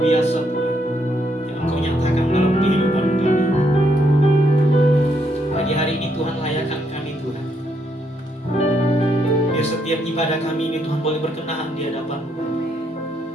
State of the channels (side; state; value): both; normal; correlation 0.75